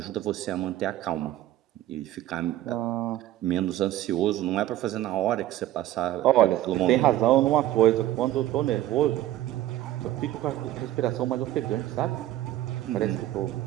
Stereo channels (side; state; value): left; quieter; 14.1 dB